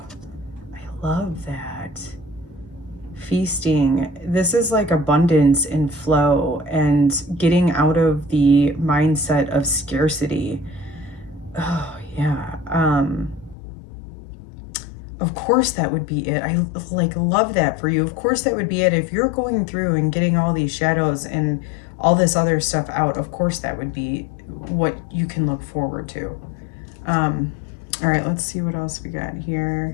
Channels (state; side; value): drops out; right; at 13.6 s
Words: I love that. feasting. This is like abundance and flow and getting out of the mindset of scarcity. Oh, yeah. Of course that would be it. I like love that for you. Of course that would be it. If you're going through and getting all these shadows and all this other stuff out, of course that would be what you can look forward to. All right, let's see what else we got